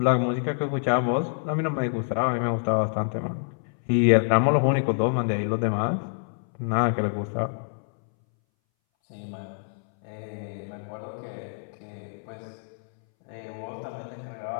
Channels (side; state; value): right; silent; 60 dB below the other